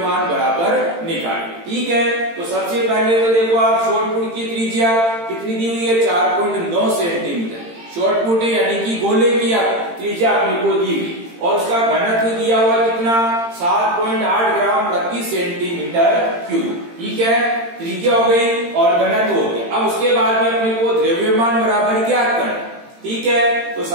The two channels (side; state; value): left; late; 18 ms